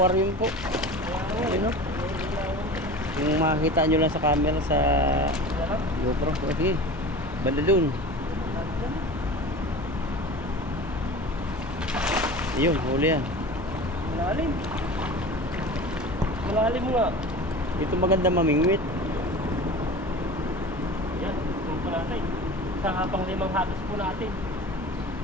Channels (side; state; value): both; normal; correlation 0.35